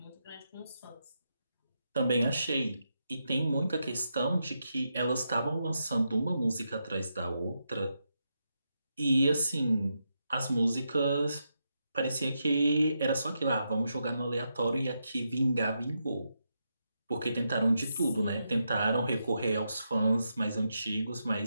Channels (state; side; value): inverted; both; correlation -0.84